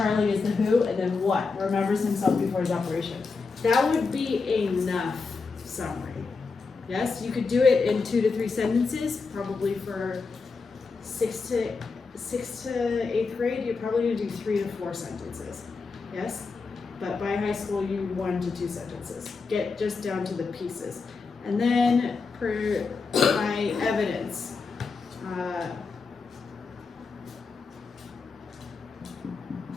is the who, and then what, remembers himself before his operation. That would be enough summary. Yes, you could do it in 2 to 3 sentences, probably for 6th to 8th grade, you're probably gonna do 3 to 4 sentences. Yes, but by high school, you 1 to 2 sentences. Get just down to the pieces. And then for my evidence,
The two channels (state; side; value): quieter; right; 4.5 dB